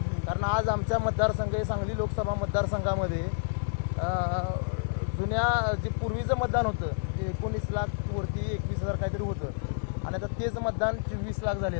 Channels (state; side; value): silent; right; digital silence